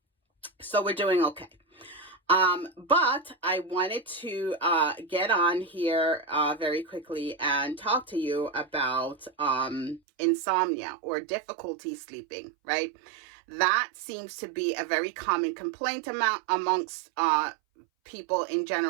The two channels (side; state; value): left; drops out; at 10.0 s